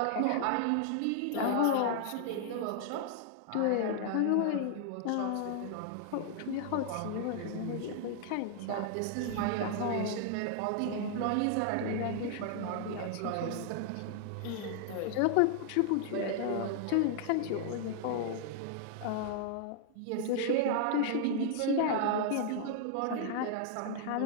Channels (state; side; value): different; both; correlation -0.01